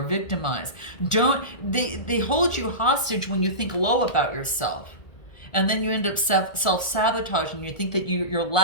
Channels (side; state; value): right; late; 1.4 ms